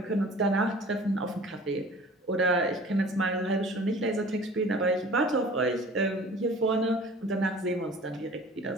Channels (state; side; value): normal; both; correlation 0.46